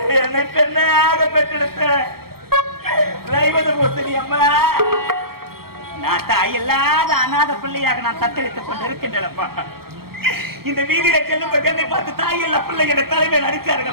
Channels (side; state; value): left; late; 0.94 ms